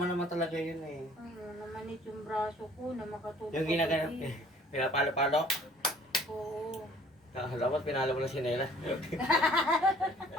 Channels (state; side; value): normal; both; correlation 0.55